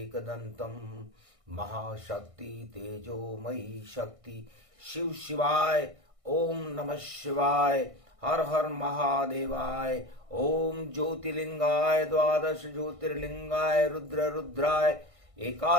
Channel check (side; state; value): left; late; 1.6 ms